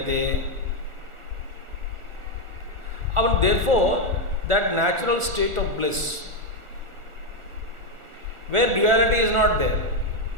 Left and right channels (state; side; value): late; left; 1.4 ms